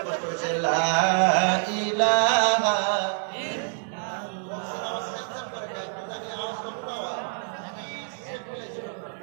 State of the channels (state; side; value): silent; left; 60 dB below the other